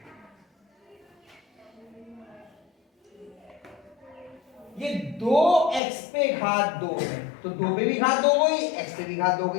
ये 2x पे घात 2 है, तो 2 पे भी घात 2 गई, x पे भी घात 2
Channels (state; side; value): drops out; right; at 5.8 s